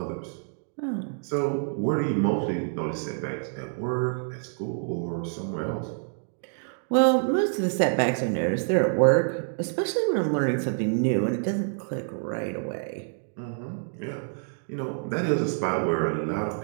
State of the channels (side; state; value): left; silent; digital silence